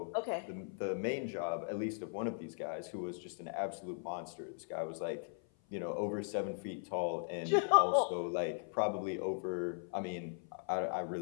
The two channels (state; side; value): silent; right; 52 dB below the other